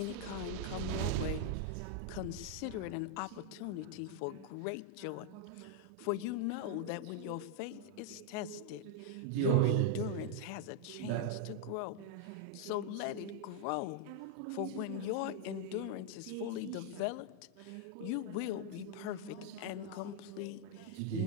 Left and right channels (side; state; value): both; different; correlation 0.00